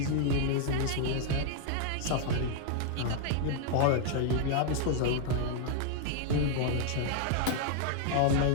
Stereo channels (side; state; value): both; different; correlation 0.00